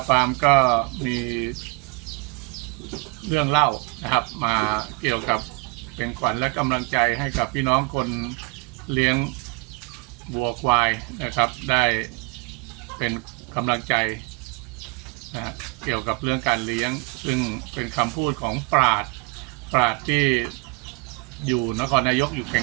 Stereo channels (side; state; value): left; quieter; 28.6 dB